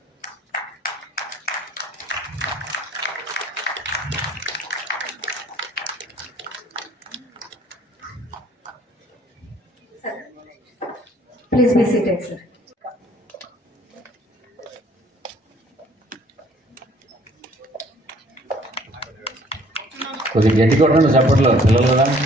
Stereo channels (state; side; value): normal; both; correlation 0.58